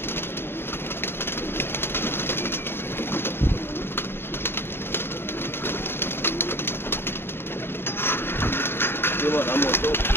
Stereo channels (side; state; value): right; late; 0.11 ms